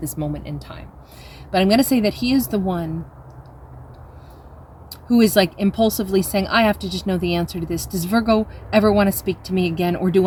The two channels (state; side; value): identical; both; correlation 1.00